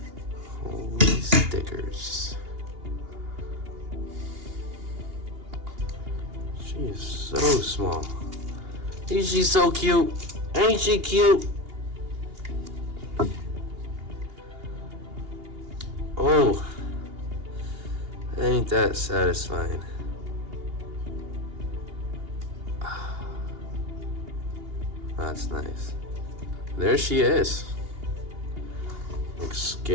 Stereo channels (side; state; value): left; late; 2.8 ms